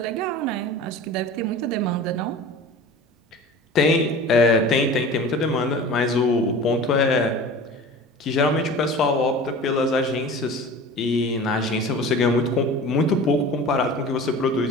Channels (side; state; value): both; normal; correlation 0.38